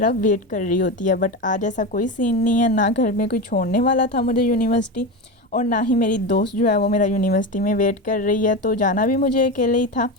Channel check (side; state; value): both; normal; correlation 0.20